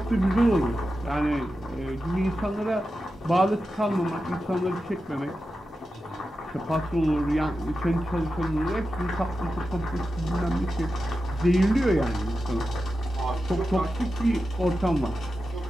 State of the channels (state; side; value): normal; both; correlation 0.91